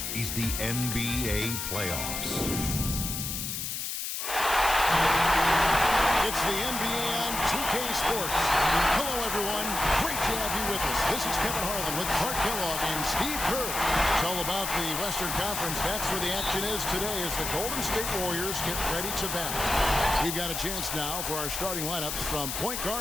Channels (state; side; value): noise; left; hiss, 3 dB below the sound